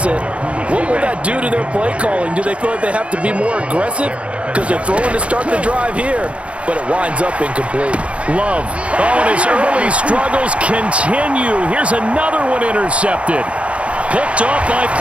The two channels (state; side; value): late; left; 0.061 ms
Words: what will that do to their play calling? Do they feel like they have to be more aggressive? Because they're throwing to start the drive here, but it winds up incomplete. Love. Oh, and his early struggles continue. Here's another one intercepted. Picked off by